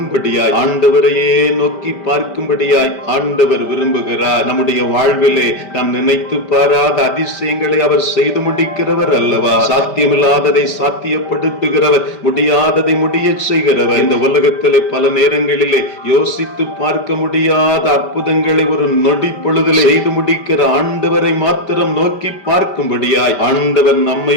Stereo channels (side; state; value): right; late; 5.1 ms